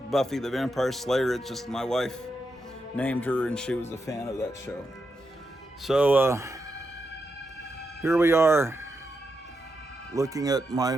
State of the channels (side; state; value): both; normal; correlation 0.85